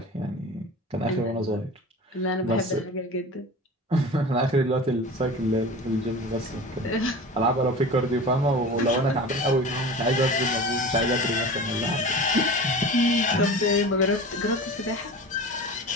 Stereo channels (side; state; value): both; normal; correlation 0.35